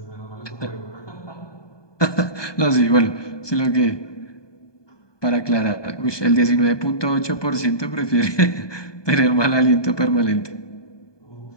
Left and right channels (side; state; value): right; late; 1.2 ms